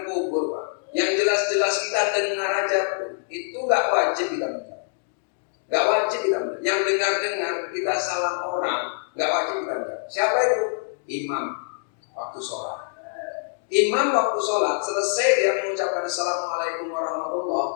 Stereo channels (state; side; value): silent; right; digital silence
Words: kubur, Pak. Yang jelas-jelas kita dengar aja pun itu nggak wajib kita menjawab. Nggak wajib kita menjawab. Yang dengar-dengar kita salam orang nggak wajib kita menjawab. Siapa itu? Imam waktu sholat. Imam waktu sholat selesai dia mengucapkan Assalamualaikum warahmatullahi